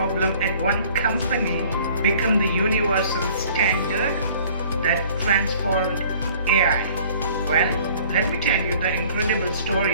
at one company became the universal standard that transformed AI? Well, let me tell you the incredible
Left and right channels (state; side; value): inverted; both; correlation -0.52